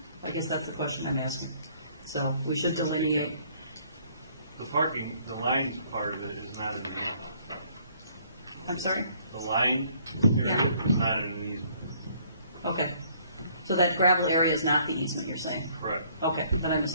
I guess that's the question I'm asking. So we should delineate. The parking, the line part of it is not in the easement. I'm sorry? The line area is not in an easement. Okay. So that gravel area is not the easement, you're saying? Correct. Okay, then I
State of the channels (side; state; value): both; inverted; correlation -0.62